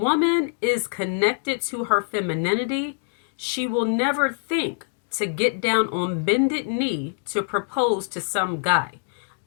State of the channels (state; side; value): silent; right; 62 dB below the other